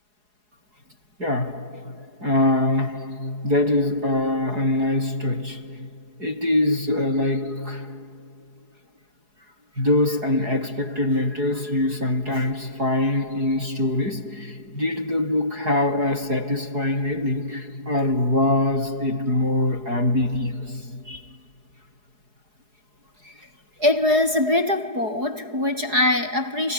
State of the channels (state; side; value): late; left; 4.8 ms